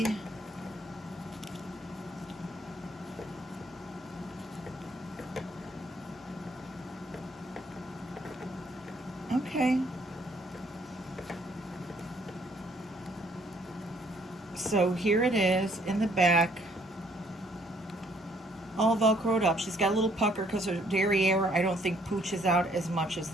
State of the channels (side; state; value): both; normal; correlation 0.65